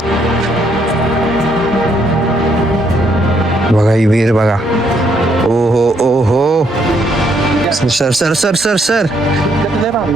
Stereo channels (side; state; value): both; normal; correlation 0.72